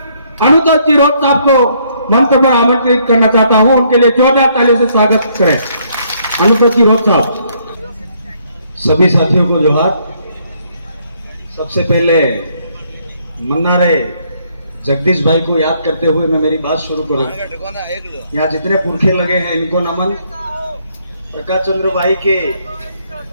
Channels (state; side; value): inverted; both; correlation -0.69